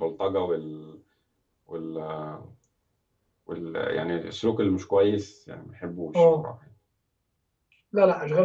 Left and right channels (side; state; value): both; identical; correlation 1.00